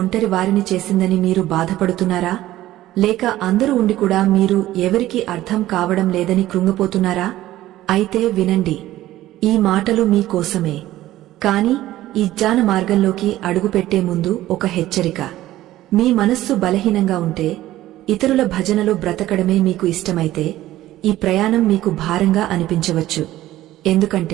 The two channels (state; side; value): quieter; left; 15.0 dB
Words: వారిని చేసిందని మీరు బాధపడుతున్నారా? లేక అందరూ ఉండి కూడా మీరు ఎవరికీ అర్థం కావడం లేదని కృంగిపోతున్నారా? అయితే వినండి, ఈ మాటలు మీకోసమే. కాని ఈ జ్ఞాన మార్గంలోకి అడుగుపెట్టే ముందు ఒక హెచ్చరిక. మీ మనస్సు బలహీనంగా ఉంటే, ఇతరుల భజనలో బ్రతకడమే మీకు ఇష్టమైతే ఈ ప్రయాణం మీకు భారంగా అనిపించవచ్చు.